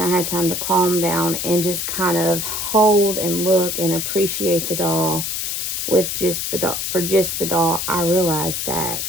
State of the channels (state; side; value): noise; left; hiss, 2 dB below the sound